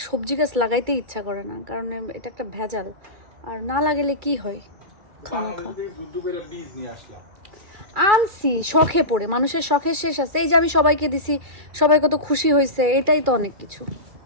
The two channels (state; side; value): late; left; 2.4 ms